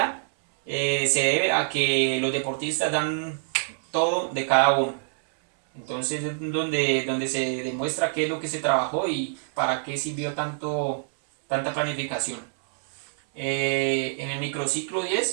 se debe a que los deportistas dan todo de cada uno. Entonces es donde se demuestra qué es lo que se trabajó y para qué sirvió tanta planificación. En el microciclo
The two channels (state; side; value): silent; left; 61 dB below the other